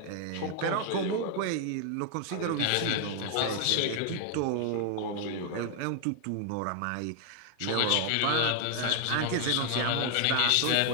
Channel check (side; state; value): both; different; correlation 0.00